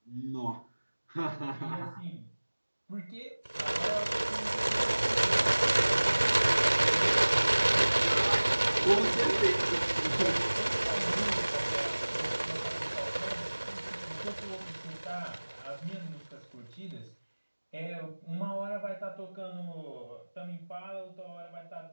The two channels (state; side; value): inverted; both; correlation -1.00